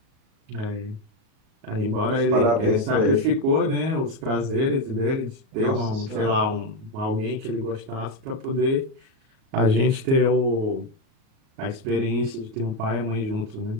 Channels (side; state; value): left; late; 38 ms